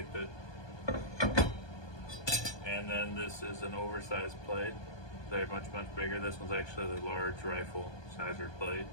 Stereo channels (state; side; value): late; right; 1.2 ms